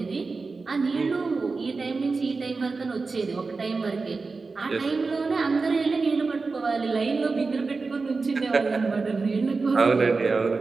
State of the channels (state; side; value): quieter; left; 4.1 dB